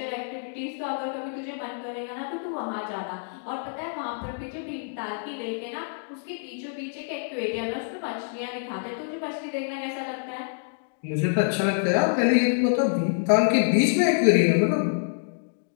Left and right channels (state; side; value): silent; right; digital silence